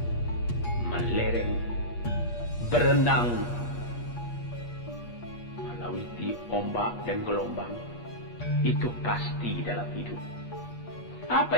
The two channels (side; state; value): right; late; 8.4 ms